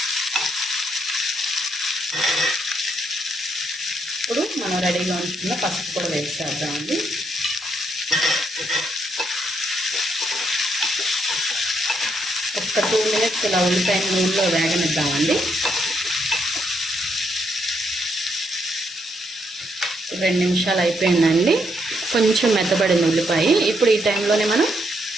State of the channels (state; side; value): normal; both; correlation 0.76